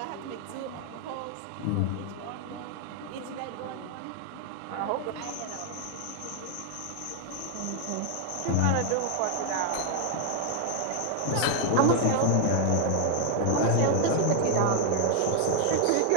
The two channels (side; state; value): both; different; correlation 0.00